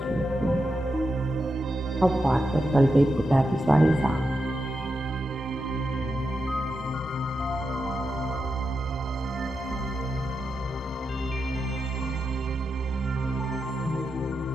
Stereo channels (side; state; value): both; normal; correlation 0.87